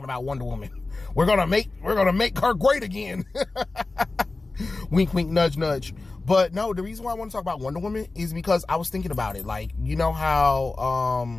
about Wonder Woman. We're gonna make her great again. Wink, wink, nudge, nudge. But no, the reason why I want to talk about Wonder Woman is because I was thinking about it. Like, you know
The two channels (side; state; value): right; quieter; 3.4 dB